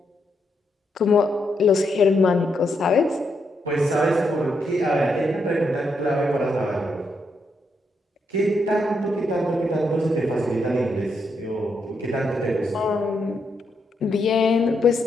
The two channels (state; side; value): normal; both; correlation 0.80